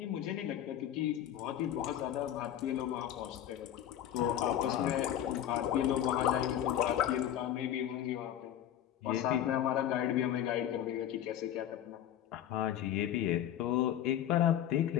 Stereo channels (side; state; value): right; quieter; 11.1 dB